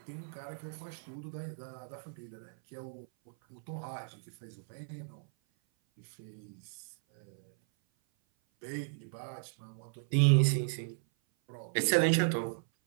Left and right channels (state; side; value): silent; left; 54 dB below the other